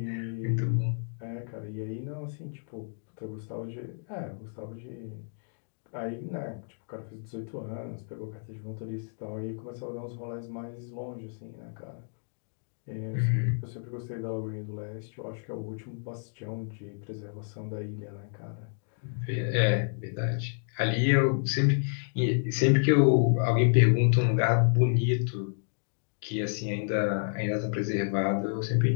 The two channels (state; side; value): silent; right; digital silence